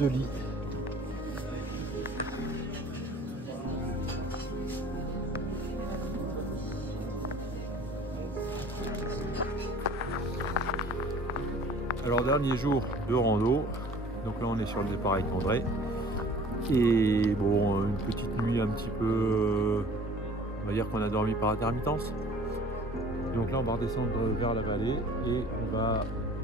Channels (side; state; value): both; normal; correlation 0.49